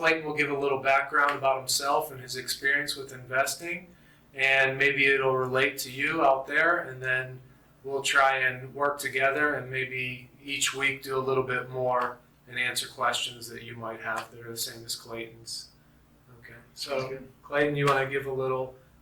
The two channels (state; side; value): identical; both; correlation 1.00